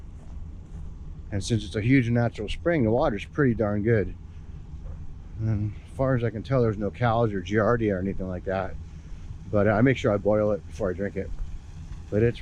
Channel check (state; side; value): identical; both; correlation 1.00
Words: And since it's a huge natural spring, the water's pretty darn good. And as far as I can tell, there's no cows or giardia or anything like that. But I make sure I boil it before I drink it. But it's